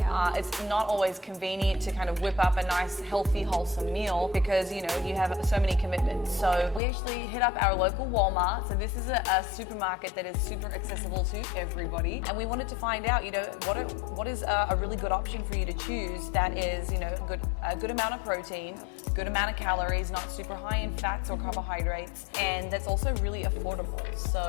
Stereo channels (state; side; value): drops out; right; at 6.8 s